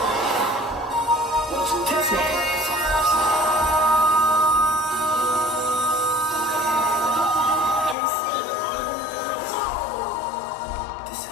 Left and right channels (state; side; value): drops out; right; at 8.0 s